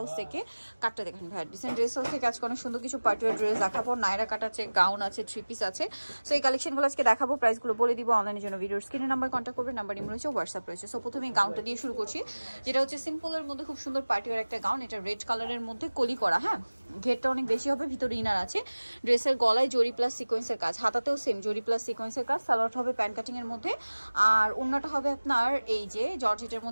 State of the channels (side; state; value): both; inverted; correlation -1.00